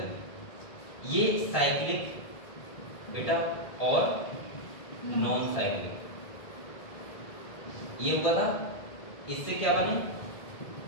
ये साइक्लिक बेटा और नॉन साइक्लिक, ये हुआ था, इससे क्या बने,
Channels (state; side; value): late; right; 1.8 ms